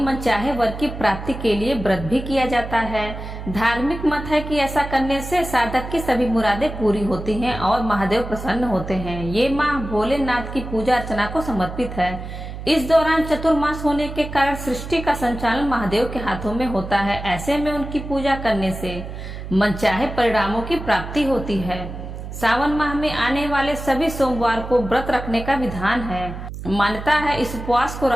मनचाहे वर की प्राप्ति के लिए व्रत भी किया जाता है। धार्मिक मत है कि ऐसा करने से साधक की सभी मुरादें पूरी होती हैं और महादेव प्रसन्न होते हैं। ये माह भोलेनाथ की पूजा अर्चना को समर्पित है। इस दौरान चतुर्मास होने के कारण सृष्टि का संचालन महादेव के हाथों में होता है। ऐसे में उनकी पूजा करने से मनचाहे परिणामों की प्राप्ति होती है। सावन माह में आने वाले सभी सोमवार को व्रत रखने का विधान है। मान्यता है इस उपवास को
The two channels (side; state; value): right; noise; hum, 9 dB below the sound